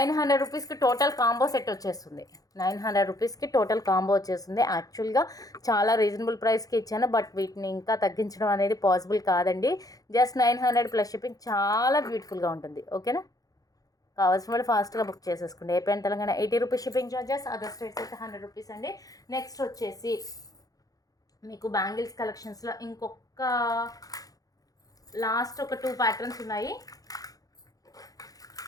రూపీస్కి టోటల్ కాంబో సెట్ వచ్చేస్తుంది. 900 రూపీస్కి టోటల్ కాంబో వచ్చేస్తుంది. యాక్చువల్గా చాలా రీజనబుల్ ప్రైస్కి ఇచ్చాను, బట్ వీటిని ఇంకా తగ్గించడం అనేది పాసిబుల్ కాదండి. Just 900 plus shipping. చాలా బ్యూటిఫుల్గా ఉంటుంది. ఓకేనా. కావాల్సిన వాళ్ళు ఫాస్ట్గా బుక్ చేసేసుకోండి. AP and Telangana 80 rupees shipping charges, other states అయితే 100 రూపీస్ అండి. నెక్స్ట్ వచ్చేసి మీకు బ్యాంగిల్స్ కలెక్షన్స్లో ఇంకొక లాస్ట్ ఒక 2 ప్యాటర్న్స్ ఉన్నాయి.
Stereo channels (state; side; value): late; right; 0.17 ms